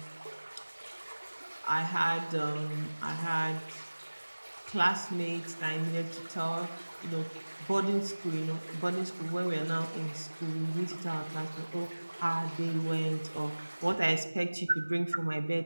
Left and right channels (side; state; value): both; inverted; correlation -1.00